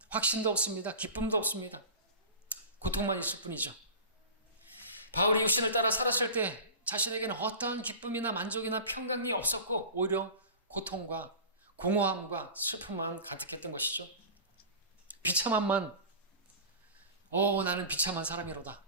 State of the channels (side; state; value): both; inverted; correlation -0.33